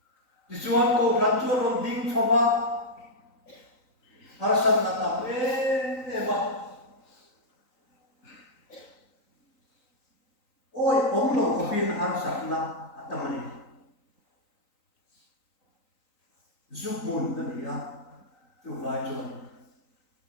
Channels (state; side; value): late; right; 3.9 ms